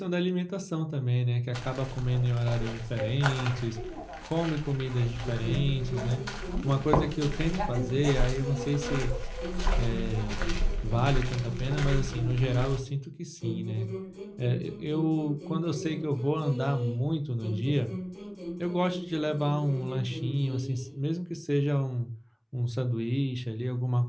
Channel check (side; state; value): both; identical; correlation 1.00